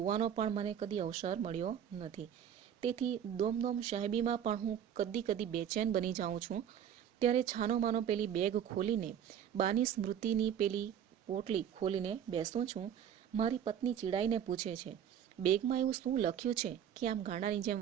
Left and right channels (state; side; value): quieter; left; 9.3 dB